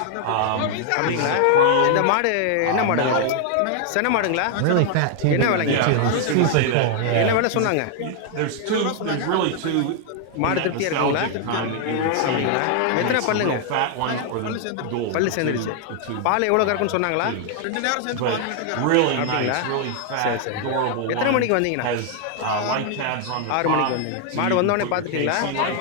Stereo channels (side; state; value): both; different; correlation 0.00